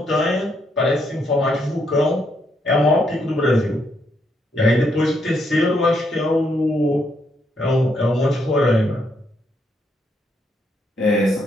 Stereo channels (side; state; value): both; normal; correlation 0.76